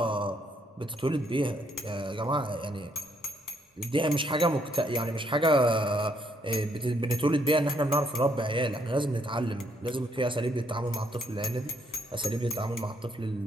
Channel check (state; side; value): normal; both; correlation 0.71